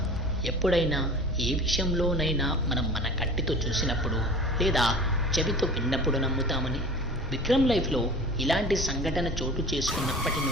ఎప్పుడైనా ఏ విషయంలోనైనా మనం మన కంటితో చూసినప్పుడు లేదా చెవితో విన్నప్పుడు నమ్ముతామని. విక్రమ్ లైఫ్లో ఇలాంటి సంఘటన చోటు చేసుకున్నప్పటి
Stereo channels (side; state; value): both; normal; correlation 0.39